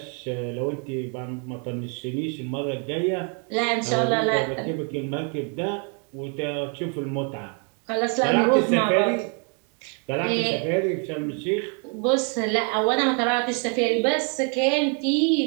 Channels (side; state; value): left; quieter; 39.8 dB